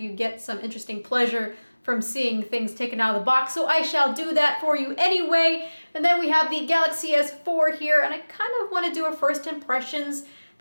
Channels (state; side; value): inverted; both; correlation -1.00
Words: get some interesting pleasure from seeing things taken out of the box, so I shall do that for you anyway. And then we have the Galaxy S4 here, and I kind of want to do a first impressions